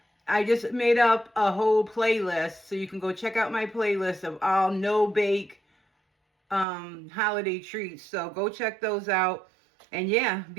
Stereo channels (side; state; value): left; drops out; at 6.7 s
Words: I just made up a whole playlist. So you can go check out my playlist of all no-bake holiday treats. So go check those out. And yeah,